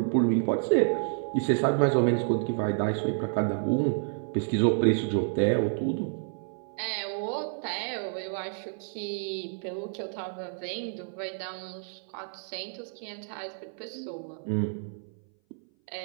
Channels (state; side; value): silent; left; 57 dB below the other